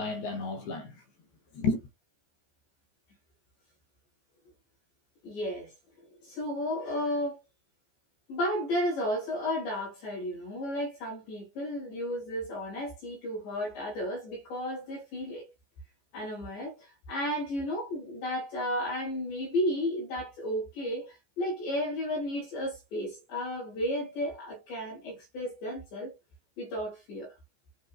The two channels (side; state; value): right; late; 14 ms